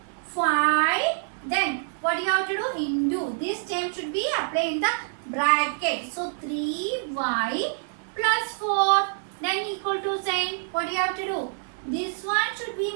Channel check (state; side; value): silent; left; digital silence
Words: 5. Then what you have to do? Into. This term should be applied in the bracket. So 3y plus 4. Then equal to sign. What you have to do? This one should be